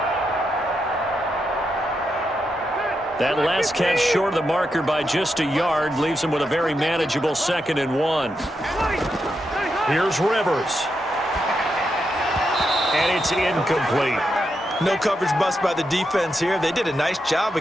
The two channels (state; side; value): normal; both; correlation 0.84